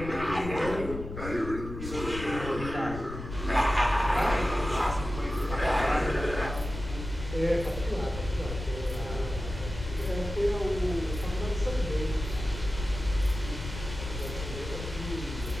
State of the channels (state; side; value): noise; left; rumble, 8 dB below the sound